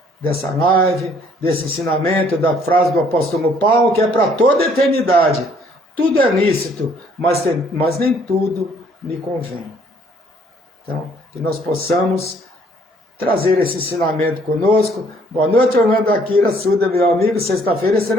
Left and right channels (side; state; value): both; normal; correlation 0.62